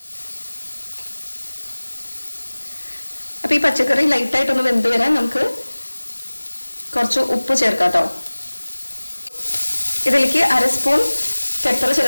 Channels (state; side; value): inverted; both; correlation -1.00